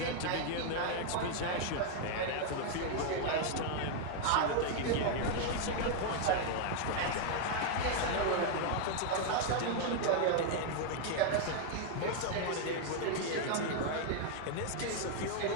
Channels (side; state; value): both; different; correlation 0.00